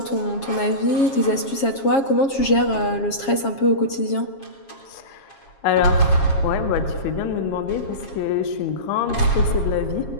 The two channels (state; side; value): late; right; 7.4 ms